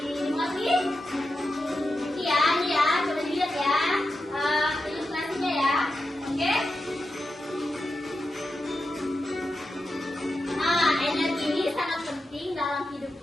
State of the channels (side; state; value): both; normal; correlation 0.89